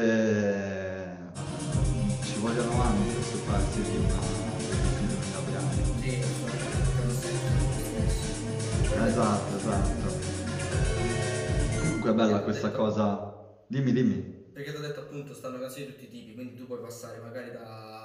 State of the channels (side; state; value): both; identical; correlation 1.00